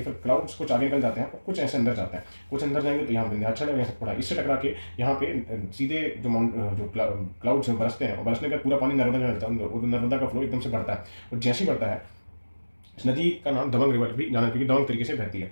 फिर क्लाउड्स कुछ आगे निकल जाते हैं और कुछ ऐसे अंदर जाते हैं। कुछ अंदर जाएंगे तो यहाँ विंध्याचल है, यहाँ थोड़ा इससे टकरा के यहाँ पे सीधे जो क्लाउड्स बरसते हैं और बरसने का पूरा पानी नर्मदा में मिलता है और नर्मदा का फ्लो एकदम से बढ़ता है। और जैसे ही बढ़ता है, इस नदी का नाम दबंग रिवर भी जाना, क्योंकि दबंग तरीके से बहती है।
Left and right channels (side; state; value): both; inverted; correlation -1.00